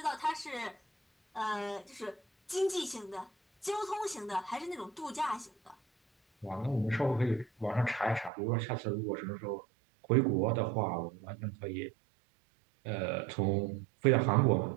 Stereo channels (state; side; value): drops out; left; at 8.3 s